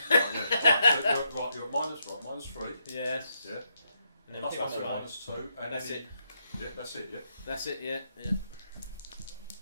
Right, you're at -3. Yes. Yeah. And then Plus pick up the one, knife. -2. And That's then it. Yeah, that's it. Yeah. That's it. Yeah. Yeah.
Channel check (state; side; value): inverted; both; correlation -0.79